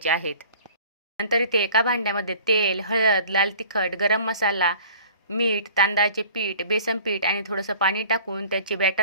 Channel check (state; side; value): inverted; both; correlation -0.48